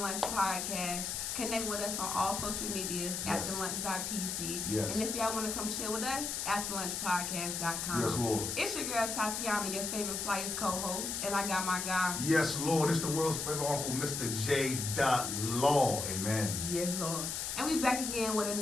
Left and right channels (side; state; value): left; noise; hiss, 3 dB below the sound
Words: Podcast. Connect with us on all social medias, afterlunch.pc. Yes. And if y'all want to come chill with us, afterlunchpodcast.com. Yes, Lord. It's your girl Tatiana, your favorite Flyers co-host, and I got my guy. Yes, Lord. It's the world's favorite uncle, Mr. J.Law. Amen. Yes, Lord. And we back again with